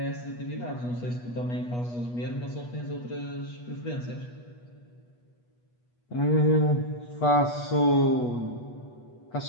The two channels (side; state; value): right; late; 8.3 ms